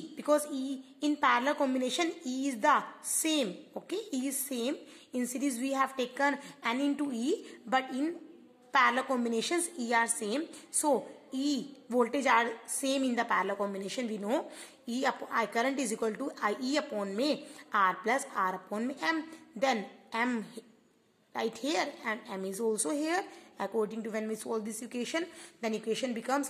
because E in parallel combination E is the same. Okay, E is same. In series we have taken N into E, but in parallel combinations E are same. So E voltage are same in the parallel combination. We know I current is equal to IE upon R plus R upon M. Then M right here and M is also here. According to when we solve this equation, then equation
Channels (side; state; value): both; identical; correlation 1.00